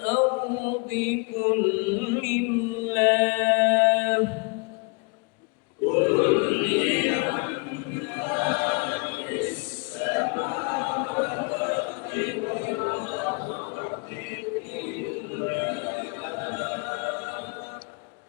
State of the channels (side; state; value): right; quieter; 32.9 dB